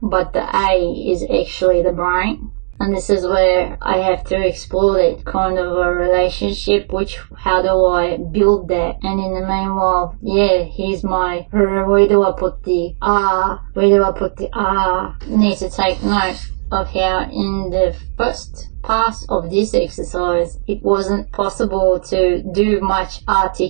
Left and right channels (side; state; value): left; silent; digital silence